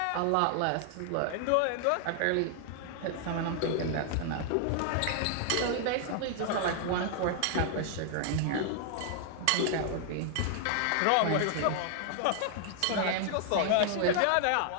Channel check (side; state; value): both; different; correlation 0.00